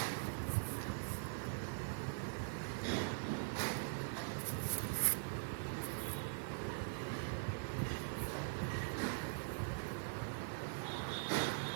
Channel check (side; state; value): left; silent; digital silence